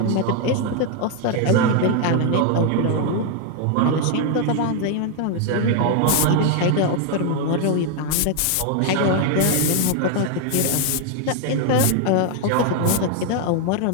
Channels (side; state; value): both; different; correlation 0.00